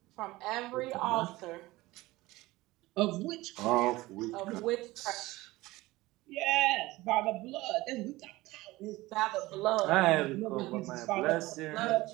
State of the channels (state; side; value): quieter; left; 19.3 dB